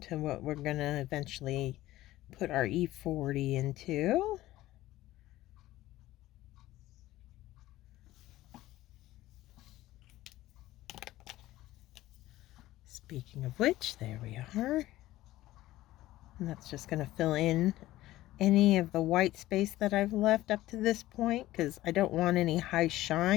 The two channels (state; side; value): quieter; right; 16.0 dB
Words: what we're going to eventually put our E40 into. Speaking of which, there we are. And that's just going to fill in any of the white space that I've left up to this point, because I don't want any high